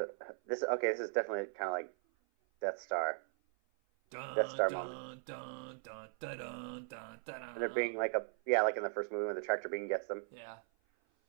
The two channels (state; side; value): silent; left; 52 dB below the other